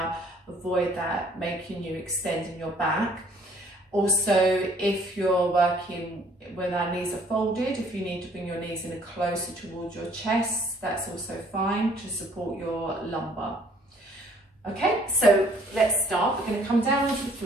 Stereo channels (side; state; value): both; normal; correlation 0.60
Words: avoid that, making you extending your back. Also, if you're working when our knees are folded, if you need to bring your knees in closer towards your chest, that's also fine to support your lumbar. Okay, so let's start. We're going to come down onto the